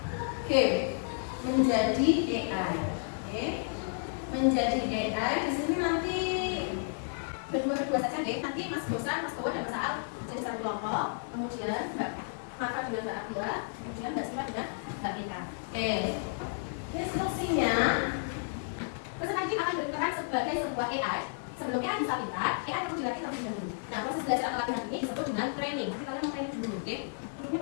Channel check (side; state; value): right; silent; digital silence